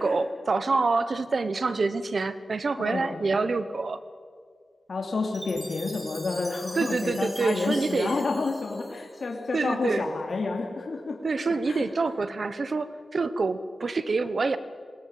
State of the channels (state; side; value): normal; both; correlation 0.91